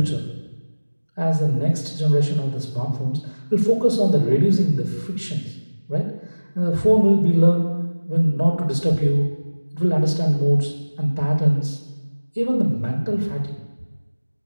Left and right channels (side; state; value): both; inverted; correlation -1.00